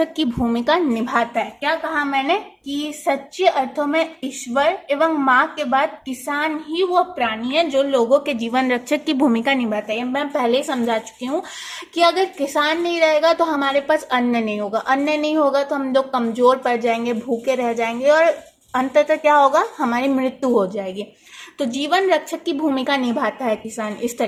की भूमिका निभाता है। क्या कहा मैंने? कि सच्चे अर्थों में ईश्वर एवं माँ के बाद किसान ही वो प्राणी है जो लोगों के जीवन रक्षक की भूमिका निभाता है। मैं पहले ही समझा चुकी हूँ कि अगर किसान नहीं रहेगा तो हमारे पास अन्न नहीं होगा, अन्न नहीं होगा तो हम लोग कमजोर पड़ जाएंगे, भूखे रह जाएंगे, और अंततः क्या होगा? हमारी मृत्यु हो जाएगी। तो जीवन रक्षक की भूमिका निभाता है किसान इस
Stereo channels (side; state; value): both; identical; correlation 1.00